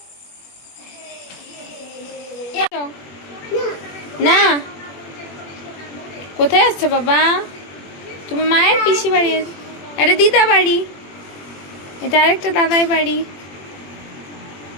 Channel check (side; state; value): right; late; 21 ms